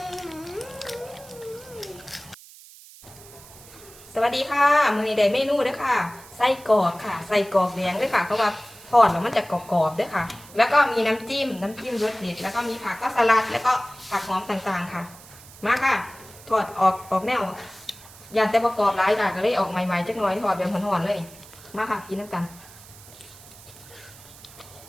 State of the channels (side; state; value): right; noise; hiss, 20 dB below the sound